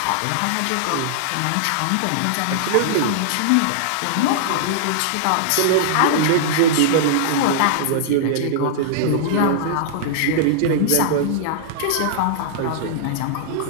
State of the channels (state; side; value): different; both; correlation -0.01